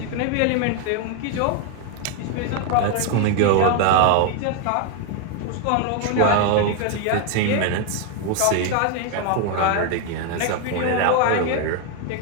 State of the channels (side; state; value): both; different; correlation 0.01